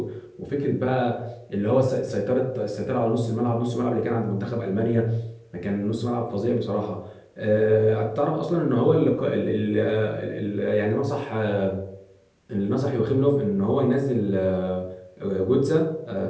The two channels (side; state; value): both; identical; correlation 1.00